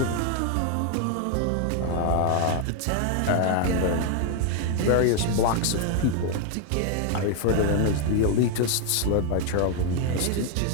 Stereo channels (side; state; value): both; different; correlation 0.00